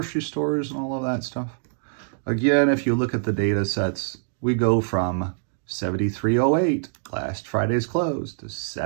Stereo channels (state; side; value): silent; left; digital silence